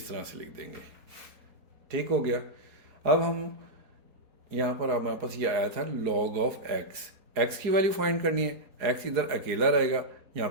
तरह से लिख देंगे। ठीक हो गया। अब हम यहाँ पर हमारे पास ये आया था log ऑफ x की वैल्यू फाइंड करनी है। x इधर अकेला रहेगा, यहाँ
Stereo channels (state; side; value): late; left; 4.7 ms